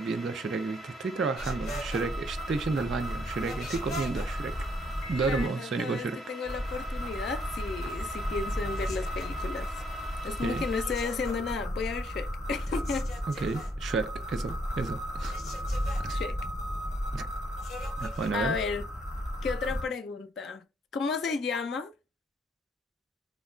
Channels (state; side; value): normal; both; correlation 0.69